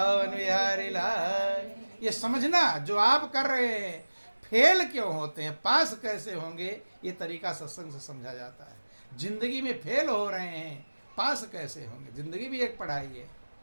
बिहारी लाल। ये समझना जो आप कर रहे हैं फेल क्यों होते हैं, पास कैसे होंगे, ये तरीका सत्संग से समझा जाता है। जिंदगी में फेल हो रहे हैं, पास कैसे होंगे? जिंदगी भी एक पढ़ाई है।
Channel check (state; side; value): inverted; both; correlation -1.00